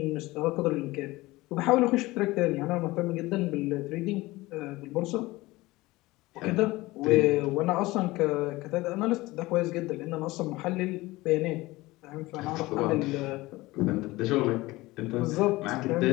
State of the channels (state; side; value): quieter; right; 20.0 dB